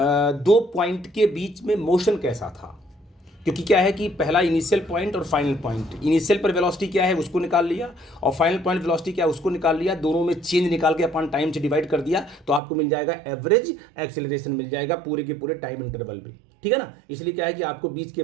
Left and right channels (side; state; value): left; drops out; at 12.6 s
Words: पॉइंट के बीच में मोशन कैसा था, क्योंकि क्या है कि पहला इनिशियल पॉइंट और फाइनल पॉइंट, इनिशियल पर वेलोसिटी क्या है उसको निकाल लिया और फाइनल पॉइंट वेलोसिटी क्या है उसको निकाल लिया, दोनों में चेंज निकाल के अपन टाइम से डिवाइड कर दिया तो आपको मिल जाएगा एवरेज एक्सेलरेशन, मिल जाएगा पूरे के पूरे टाइम इंटरवल में। ठीक है ना। इसलिए क्या है कि आपको बीच के